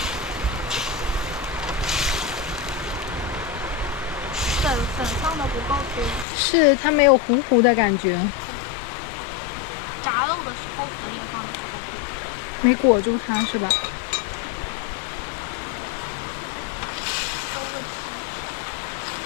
粉放的不够多。是，它没有糊糊的感觉。炸肉的时候粉也放的不够多。没裹住它是吧？都问题。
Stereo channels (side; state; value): right; drops out; at 6.2 s